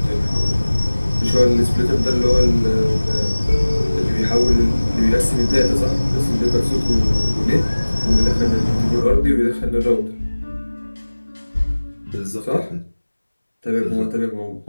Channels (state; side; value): inverted; both; correlation -1.00